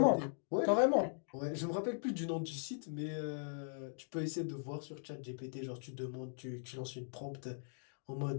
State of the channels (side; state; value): right; silent; digital silence